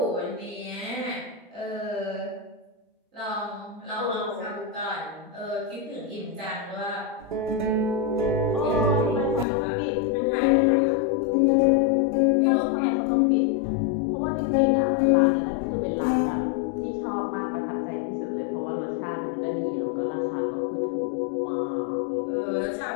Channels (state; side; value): drops out; right; at 9.5 s